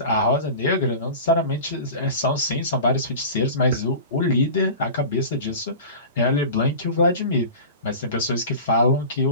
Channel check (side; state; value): both; inverted; correlation -0.34